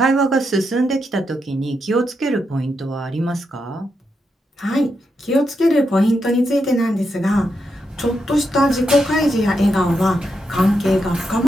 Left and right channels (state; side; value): normal; both; correlation 0.83